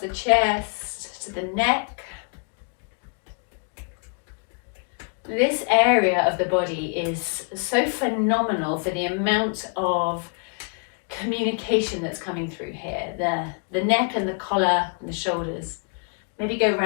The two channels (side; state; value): right; quieter; 39.8 dB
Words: chest to the neck. This area of the body is so phenomenal for the amount of communication that's coming through here. The neck and the collar and the shoulders. Maybe go